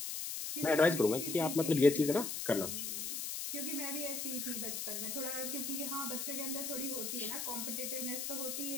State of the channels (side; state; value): left; noise; hiss, 4 dB below the sound